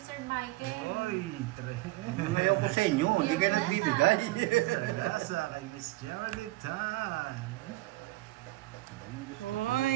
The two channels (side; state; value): left; quieter; 19.1 dB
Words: Michael. Oy, Ngayon ko sa inyo, hindi kayo nagbibigay. Sagasa kay Miss Geraldine Tan.